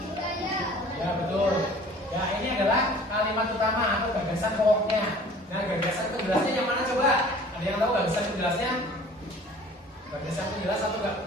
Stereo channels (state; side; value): normal; both; correlation 0.48